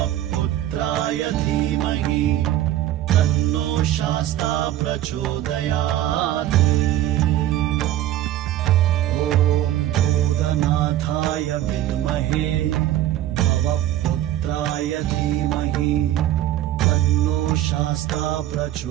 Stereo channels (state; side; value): quieter; left; 13.0 dB